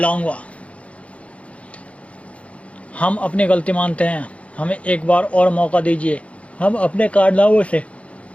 हम अपनी गलती मानते हैं, हमें एक बार और मौका दीजिए। हम अपने कारनामों से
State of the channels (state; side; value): late; right; 0.064 ms